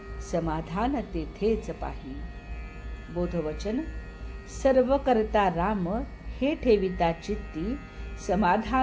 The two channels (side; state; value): both; identical; correlation 1.00